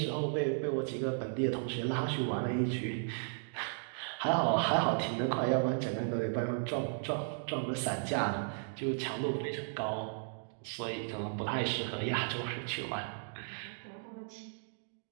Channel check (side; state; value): left; silent; digital silence